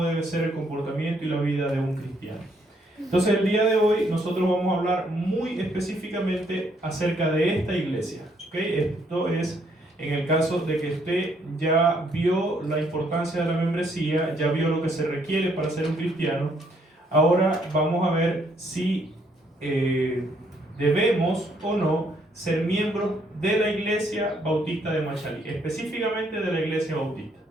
debe ser el comportamiento y la vida de un cristiano. Entonces el día de hoy nosotros vamos a hablar muy específicamente acerca de esta iglesia, ¿okay? Esto es en el caso de que usted ya vio la importancia de la membresía, ya vio lo que se requiere para ser un cristiano. Ahora vamos a ver si debemos o no ser miembros de la iglesia bautista de Machalí, específicamente de la iglesia bautista,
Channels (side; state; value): both; normal; correlation 0.70